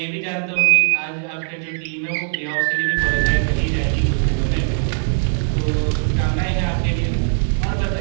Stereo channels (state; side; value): silent; left; digital silence